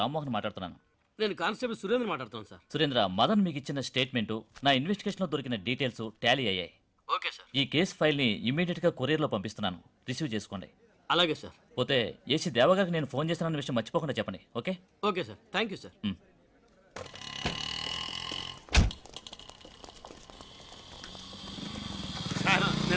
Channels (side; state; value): both; identical; correlation 1.00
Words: మాట్లాడుతున్నాను. నేను కానిస్టేబుల్ సురేంద్ర మాట్లాడుతాను సార్. సురేంద్ర, మదన్ మీకు ఇచ్చిన స్టేట్మెంట్ నా ఇన్వెస్టిగేషన్ లో దొరికిన డీటెయిల్స్ టాలీ అయ్యాయి. Okay sir. ఈ కేసు ఫైల్ ని ఇమీడియట్ గా కొరియర్ లో పంపిస్తున్నాను, రిసీవ్ చేసుకోండి. అలాగే సార్. పోతే ఏసీ దేవగారికి నేను ఫోన్ చేసిన విషయం మర్చిపోకుండా చెప్పండి. Okay? Okay sir. Thank you sir.